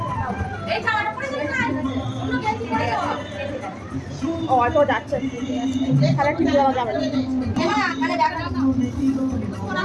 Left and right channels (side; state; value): both; identical; correlation 1.00